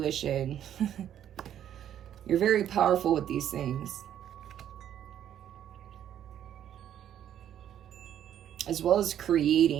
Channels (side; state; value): left; quieter; 10.4 dB